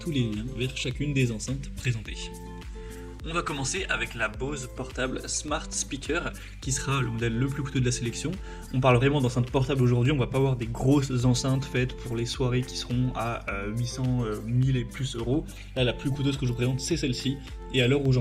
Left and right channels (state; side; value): identical; both; correlation 1.00